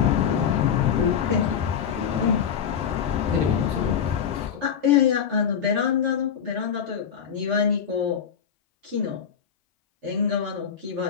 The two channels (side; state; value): right; quieter; 7.8 dB